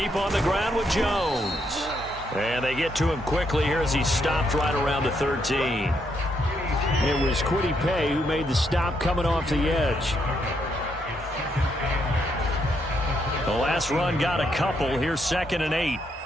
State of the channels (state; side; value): normal; both; correlation 0.76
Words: on the ground with Jones. And they get to him quickly here as he stopped right around the 13. It was Kwity Paye who made the stop coming off the edge. The last run got a couple. Here's 2nd and 8.